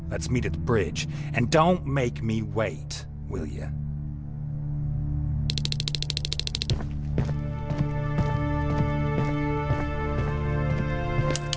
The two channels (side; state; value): both; identical; correlation 1.00